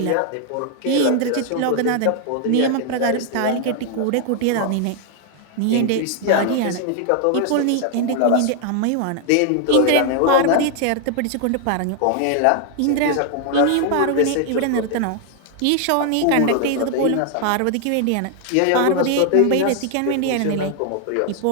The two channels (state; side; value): different; both; correlation 0.00